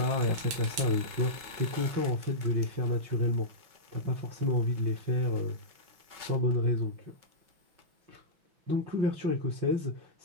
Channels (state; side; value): late; left; 6.1 ms